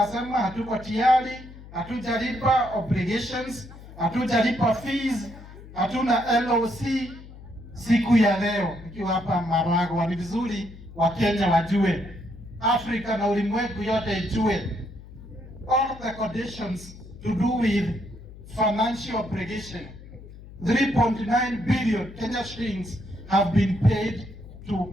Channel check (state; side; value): noise; left; hum, 17 dB below the sound